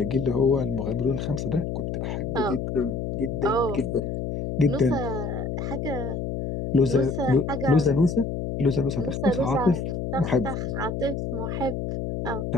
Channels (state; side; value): noise; left; hum, 3 dB below the sound